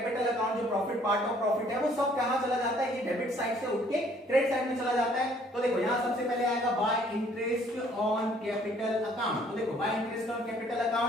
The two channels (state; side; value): normal; both; correlation 0.60